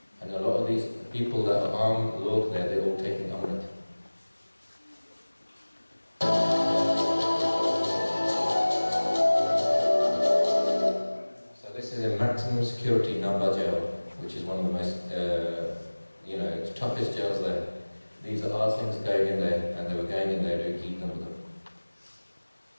And a lot of these people that are armed lords there, they're all taking Amrit. So this is a maximum security Namba jail, which is one of the most, toughest jails there. These are our things going in there, and they were going in there to keep them with them.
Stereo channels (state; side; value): inverted; both; correlation -1.00